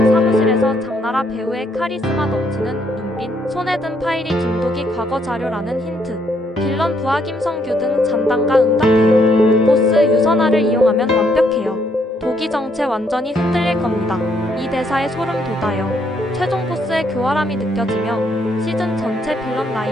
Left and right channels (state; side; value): normal; both; correlation 0.71